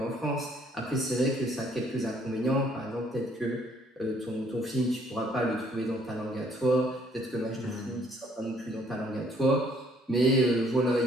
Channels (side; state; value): both; normal; correlation 0.64